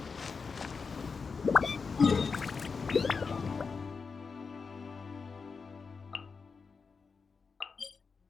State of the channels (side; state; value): right; quieter; 5.1 dB